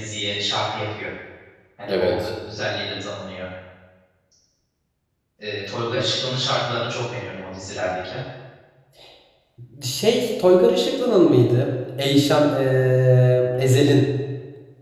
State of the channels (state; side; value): identical; both; correlation 1.00